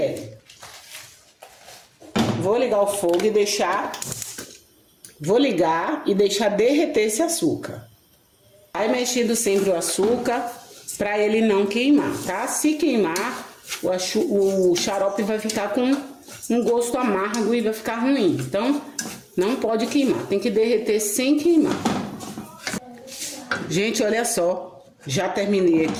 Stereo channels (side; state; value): both; identical; correlation 1.00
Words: Vou ligar o fogo e deixar... Vou ligar e deixar derreter esse açúcar. Vai mexendo sempre o açúcar para ele não queimar, tá? Se queimar, o xarope vai ficar com um gosto amargo e vai ficar ruim. Então, não pode queimar, tem que derreter sem queimar. Gente, olha só, já terminei